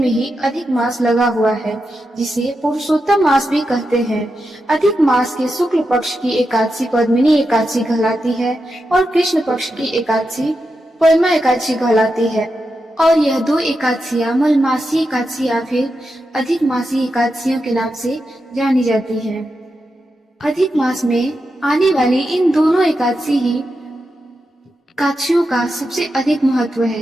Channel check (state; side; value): normal; both; correlation 0.88